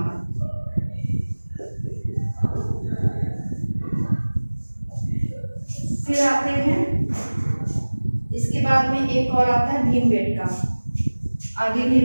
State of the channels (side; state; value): both; inverted; correlation -1.00